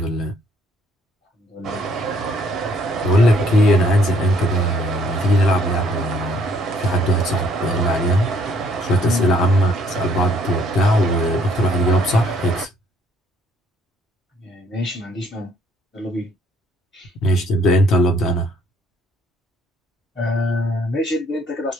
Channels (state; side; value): normal; both; correlation 0.64